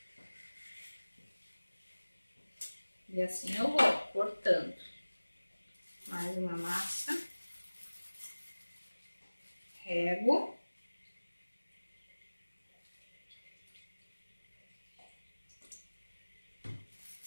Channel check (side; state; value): both; inverted; correlation -1.00